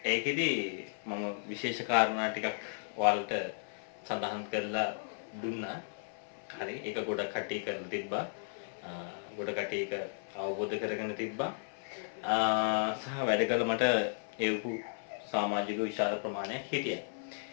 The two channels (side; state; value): right; silent; 55 dB below the other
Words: ඒකෙදි මම විශේෂ කාරණා ටිකක් ඔයාලට සඳහන් කරලා දුන්නා. හරි ඒක ගොඩක් කට්ටිය කරලා තිබ්බා. ගොඩ කට්ටිය ඒක අවබෝධ කරගෙන තිබ්බා. සහ වැඩ කළ මට ඒවු සමාජික විශාල ප්‍රමාණයක් හිටියා.